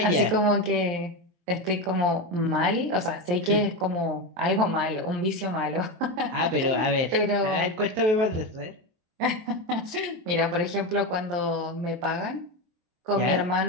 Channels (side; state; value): left; late; 23 ms